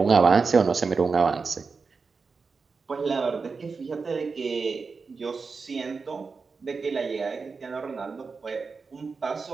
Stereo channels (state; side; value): quieter; left; 4.7 dB